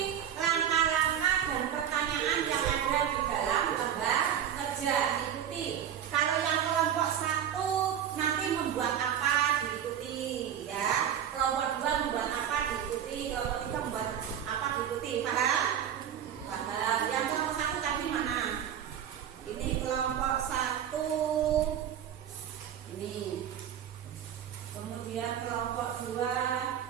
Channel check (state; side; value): quieter; left; 9.6 dB